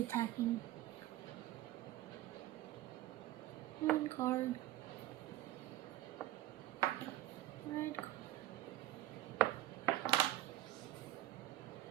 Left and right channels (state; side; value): quieter; left; 15.0 dB